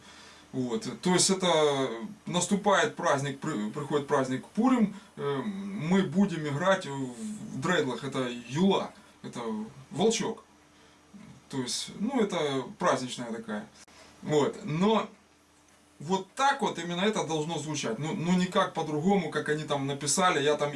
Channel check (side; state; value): both; identical; correlation 1.00